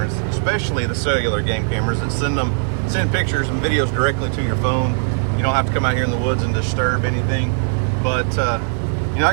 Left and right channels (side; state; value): left; silent; digital silence